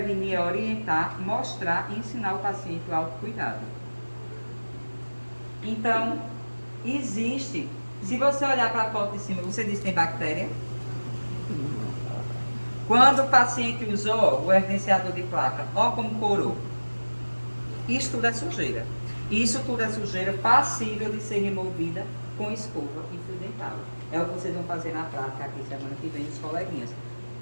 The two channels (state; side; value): inverted; both; correlation -1.00